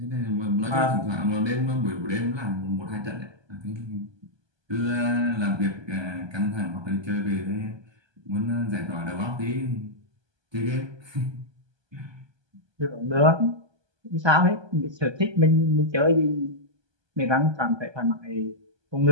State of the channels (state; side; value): late; left; 1.2 ms